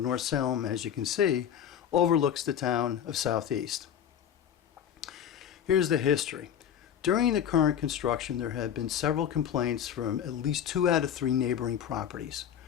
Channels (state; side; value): quieter; right; 9.1 dB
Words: Salem, as you can see, overlooks the town of Southeast. Here's the history. During the current construction, there have been several complaints from at least 2 out of 3 neighboring properties.